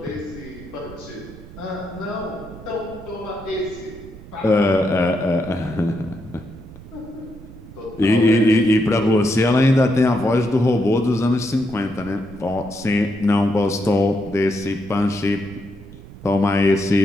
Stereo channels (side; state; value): right; noise; rumble, 17 dB below the sound